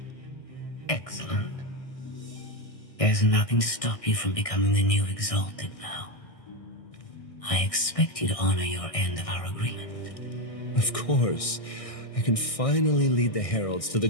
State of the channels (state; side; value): late; right; 1.6 ms